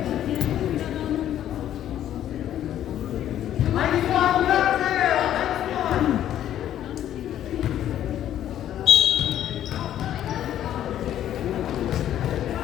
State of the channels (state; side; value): quieter; right; 11.4 dB